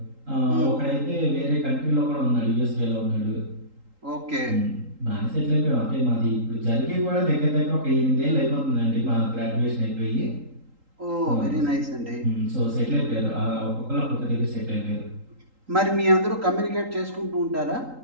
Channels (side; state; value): left; late; 3.8 ms